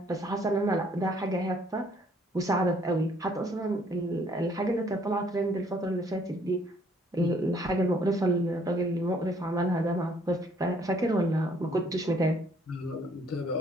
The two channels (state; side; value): normal; both; correlation 0.63